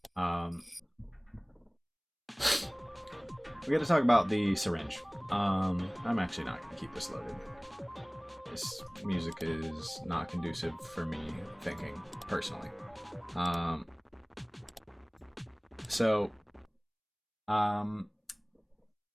We got to talk about the syringe. I'm actually not going to keep this loaded. This music is not conducive for me thinking personally.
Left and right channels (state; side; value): identical; both; correlation 1.00